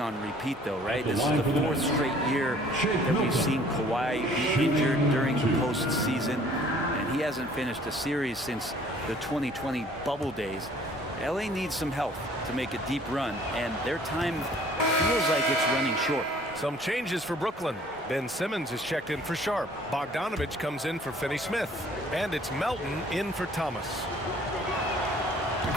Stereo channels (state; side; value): normal; both; correlation 0.55